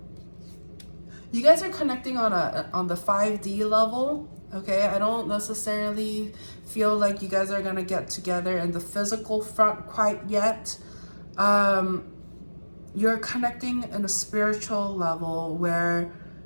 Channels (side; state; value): both; inverted; correlation -1.00